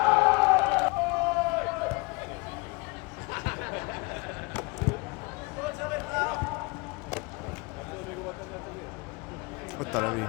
Ott a Levi.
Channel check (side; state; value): right; quieter; 27.3 dB